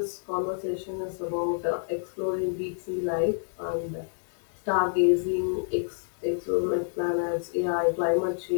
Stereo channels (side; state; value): right; silent; digital silence